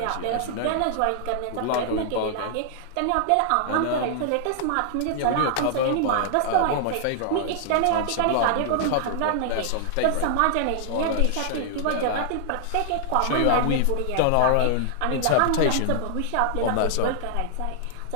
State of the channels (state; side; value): different; both; correlation -0.01